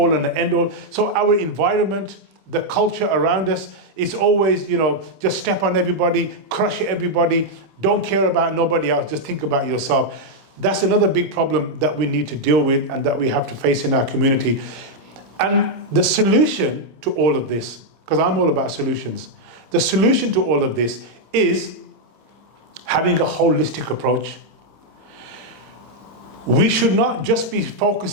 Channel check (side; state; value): left; late; 26 ms